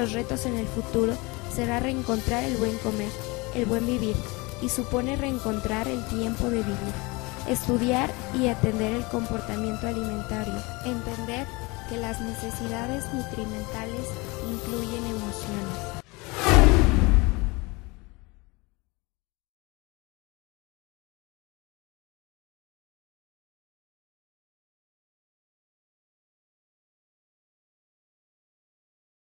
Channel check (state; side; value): quieter; right; 25.6 dB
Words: retos en el futuro será reencontrar el buen comer, el buen vivir, y supone reencontrar el tiempo de vivir, estudiar y atender el comportamiento alimentario, entender que las necesidades nutrimentales incluyen emociones.